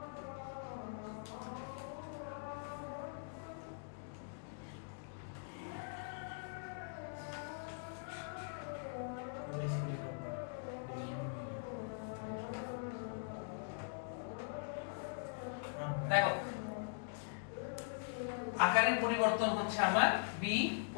দেখো আকারের পরিবর্তন হচ্ছে আমার বি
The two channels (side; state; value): right; silent; digital silence